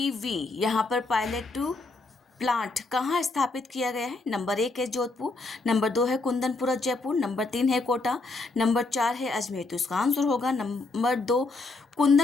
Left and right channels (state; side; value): quieter; right; 3.4 dB